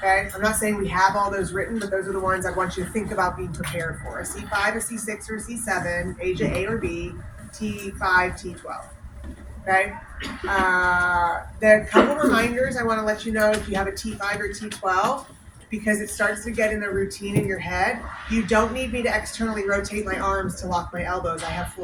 Okay, I'm not saying we have all those written, but those are the ones I want you to think about being prepared for. A C5, a C6, or a C7, Asia A or B, T5, T12. Okay. There are a couple reminders I want to let you know if you have a T5 or T12, because it starts to get in a routine in your head. You don't need me to externally rotate my arms to lock my elbows. I have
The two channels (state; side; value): identical; both; correlation 1.00